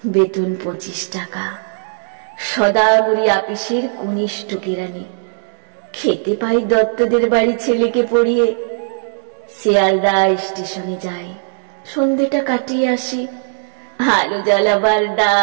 বেতন 25 টাকা, সদাগরি আপিসের কনিষ্ঠ কেরানি। খেতে পাই দত্তদের বাড়ি ছেলেকে পড়িয়ে। শিয়ালদা স্টেশনে যাই, সন্ধ্যেটা কাটিয়ে আসি। আলো জ্বালাবার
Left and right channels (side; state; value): left; silent; digital silence